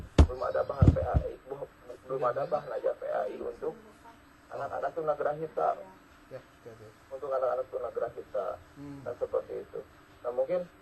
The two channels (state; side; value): identical; both; correlation 1.00